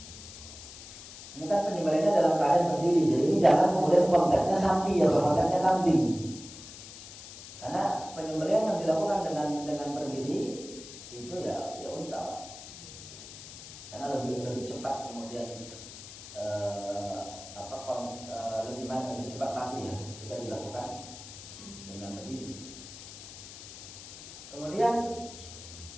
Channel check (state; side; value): noise; left; hiss, 14 dB below the sound